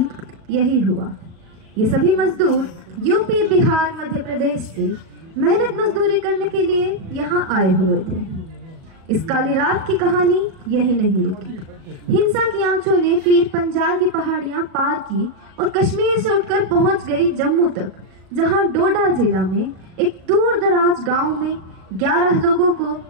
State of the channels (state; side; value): late; left; 37 ms